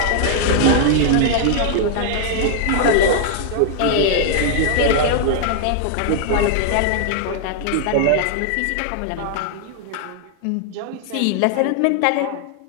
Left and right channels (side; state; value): both; different; correlation 0.00